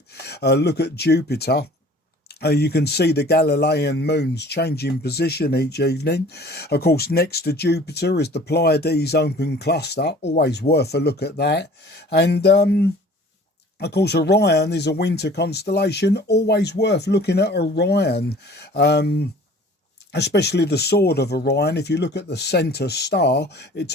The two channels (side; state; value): both; normal; correlation 0.49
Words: look at Jupiter. You can see the Galilean moons changing position each evening. Of course, next to Jupiter is the Pleiades open cluster, always worth a look at that. And of course, Orion is a winter constellation, always worth looking at Orion. Especially the sword of Orion. If you look at the centre star, it